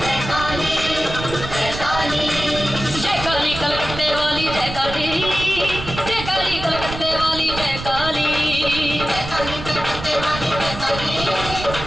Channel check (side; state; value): right; noise; rumble, 9 dB below the sound